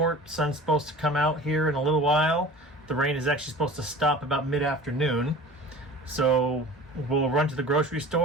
sun's supposed to come out here in a little while. The rain is actually supposed to stop about mid-afternoon. So we'll run to the grocery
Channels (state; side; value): normal; both; correlation 0.40